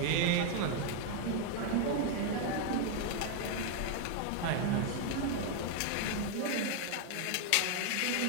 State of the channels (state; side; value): different; both; correlation 0.00